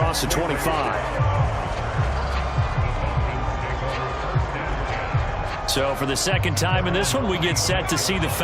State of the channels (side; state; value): both; identical; correlation 1.00